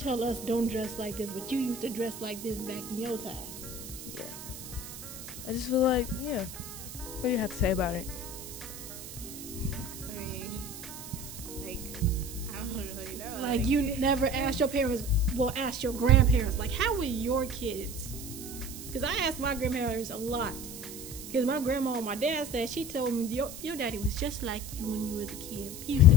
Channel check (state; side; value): noise; right; hiss, 11 dB below the sound